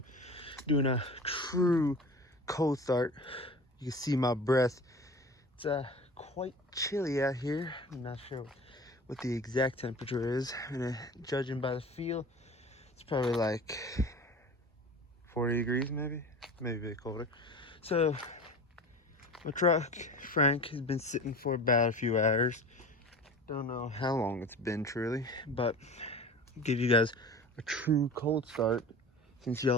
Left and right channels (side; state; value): both; normal; correlation 0.36